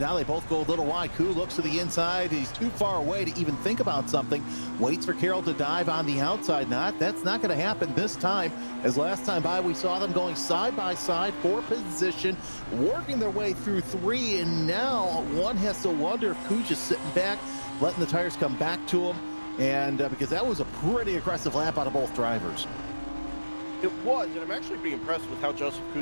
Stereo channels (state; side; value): inverted; both; correlation -1.00